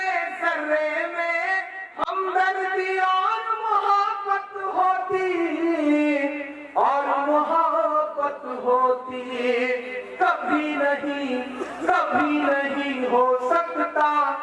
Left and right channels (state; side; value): identical; both; correlation 1.00